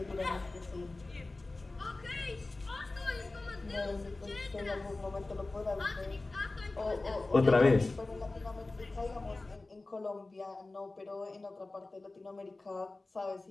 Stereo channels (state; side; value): quieter; right; 3.2 dB